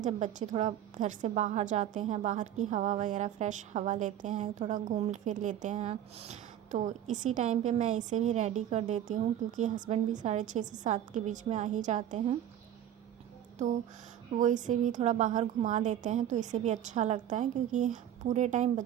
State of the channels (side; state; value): left; quieter; 10.9 dB